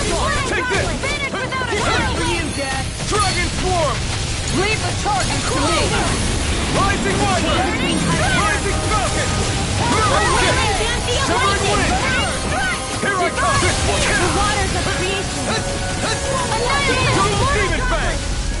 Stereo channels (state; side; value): identical; both; correlation 1.00